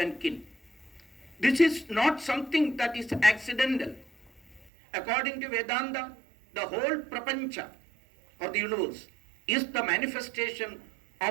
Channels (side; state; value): left; drops out; at 4.7 s